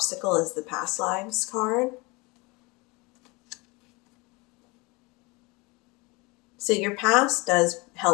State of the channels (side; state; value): right; quieter; 25.8 dB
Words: is the Past Lives card. So your past does